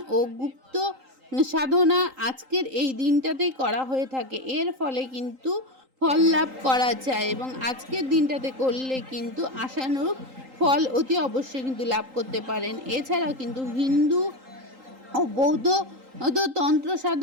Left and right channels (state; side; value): late; left; 3.8 ms